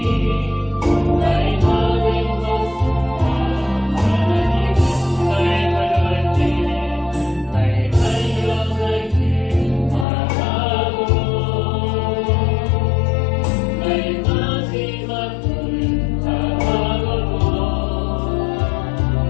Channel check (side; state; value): right; drops out; at 10.1 s